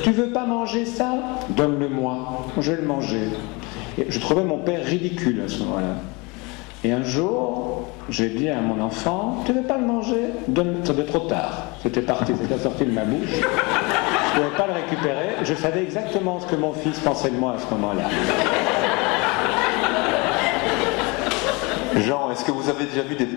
Tu veux pas manger ça? Donne-le-moi, je vais le manger. » Et je trouvais mon père ridicule à ce moment-là. Et un jour, j'ai dit à mon enfant « Tu veux pas le manger? Donne-le. » C'était trop tard, c'était sorti de ma bouche. Je ne pouvais pas le récupérer, je savais exactement ce que mon fils pensait de moi à ce moment-là. Jean, est-ce que vous avez déjà vu des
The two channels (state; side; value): quieter; right; 27.2 dB